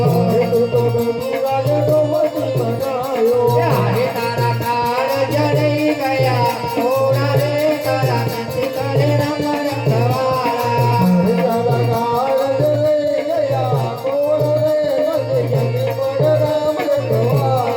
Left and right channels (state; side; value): identical; both; correlation 1.00